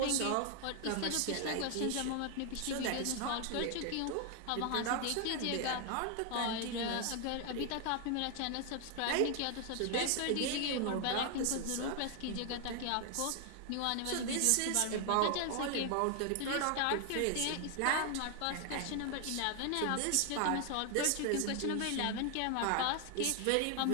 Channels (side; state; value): both; different; correlation 0.00